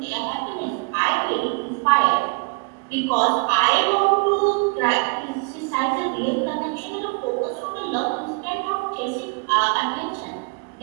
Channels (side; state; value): left; quieter; 32.6 dB